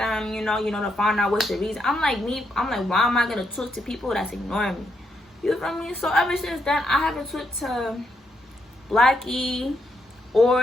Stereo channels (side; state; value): both; normal; correlation 0.78